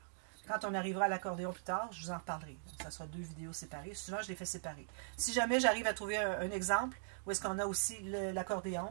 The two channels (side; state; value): left; silent; digital silence